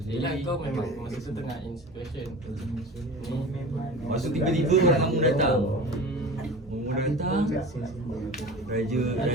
Yelah kau memang masa tu tengah in situation. Lepas tu tiba-tiba orang kampung datang. Orang datang, raja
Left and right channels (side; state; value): both; normal; correlation 0.35